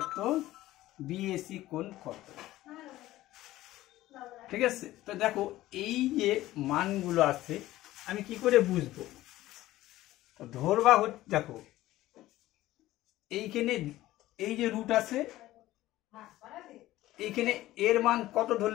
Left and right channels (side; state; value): right; quieter; 15.9 dB